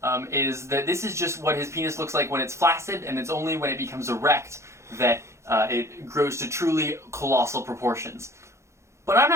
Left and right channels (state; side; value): late; left; 0.14 ms